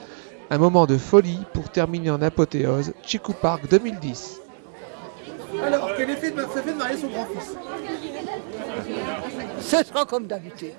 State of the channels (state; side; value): silent; left; digital silence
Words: un moment de folie pour terminer en apothéose Chicou Park 2010. Alors, quel effet ça fait de marier son grand-fils? Ce sera comme d'habitude.